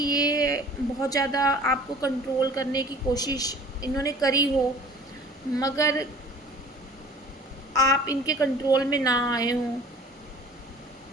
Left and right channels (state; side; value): normal; both; correlation 0.46